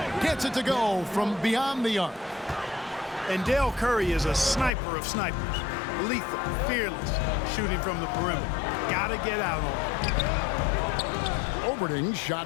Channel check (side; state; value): right; drops out; at 4.7 s